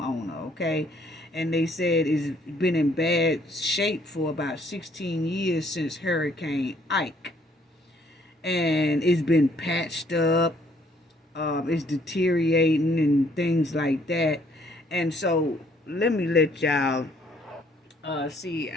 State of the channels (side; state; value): both; normal; correlation 0.64